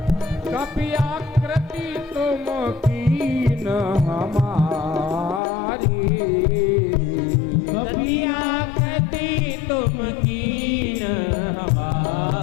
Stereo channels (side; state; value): right; drops out; at 5.4 s